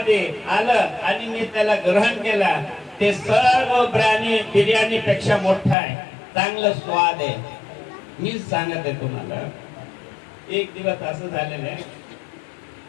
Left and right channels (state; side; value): drops out; right; at 5.8 s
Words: आलं आणि मी त्याला ग्रहण केला, ते सर्व बिर्याणी पेक्षा मोठा आहे, चांगलं स्वाद आहे. मी सांगत आहे तुम्हाला. एक दिवस असं झालेलं आहे,